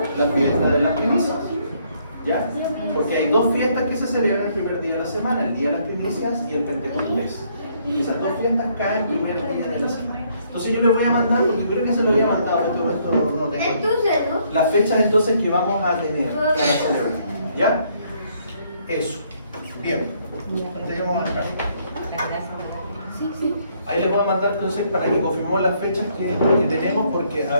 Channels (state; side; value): inverted; both; correlation -0.68